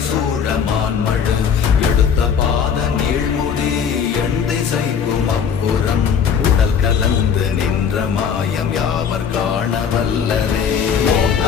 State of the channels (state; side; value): quieter; right; 7.2 dB